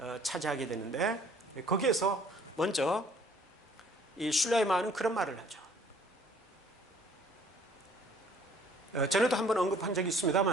차지하게 되는데, 거기에서 먼저 이 슐라이마는 그런 말을 하죠. 전에도 한번 언급한 적이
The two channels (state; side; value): normal; both; correlation 0.57